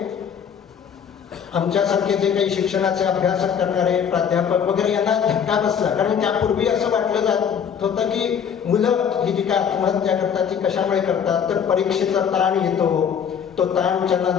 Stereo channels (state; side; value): quieter; right; 7.7 dB